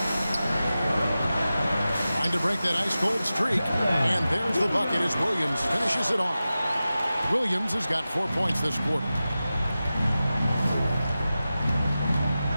Trying to break that ice-cold streak, and there's the bucket as Williams finishes it off. Williams has got 4 points this quarter.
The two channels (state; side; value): inverted; both; correlation -0.94